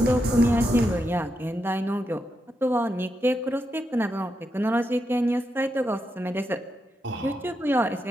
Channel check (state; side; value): normal; both; correlation 0.85